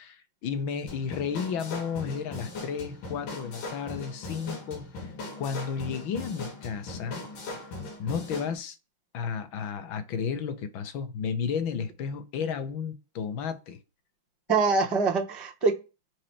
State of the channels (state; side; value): late; right; 5.7 ms